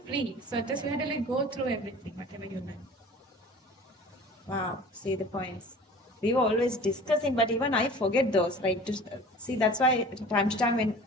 free. So just you have to like go through everything, whatever you learn. Wow, see the points. We were always discussing, but even I forget those. Like to see, that's why time to time when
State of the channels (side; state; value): both; normal; correlation 0.42